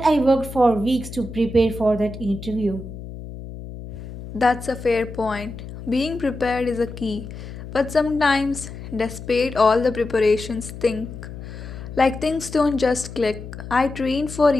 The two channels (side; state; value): left; noise; hum, 11 dB below the sound